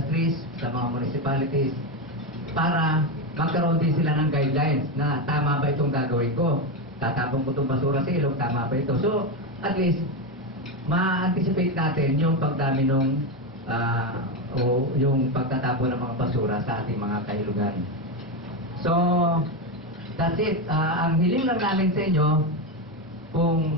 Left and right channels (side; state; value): both; normal; correlation 0.11